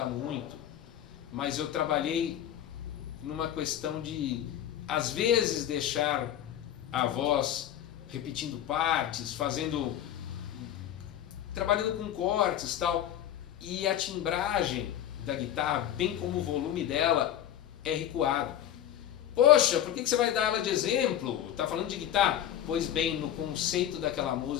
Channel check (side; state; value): right; quieter; 11.2 dB